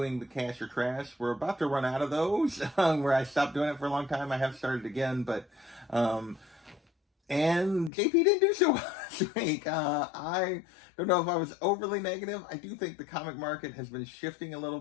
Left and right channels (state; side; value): drops out; right; at 7.9 s